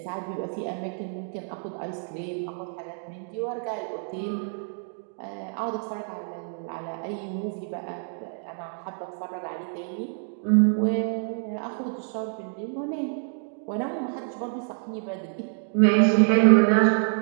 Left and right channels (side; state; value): left; silent; 60 dB below the other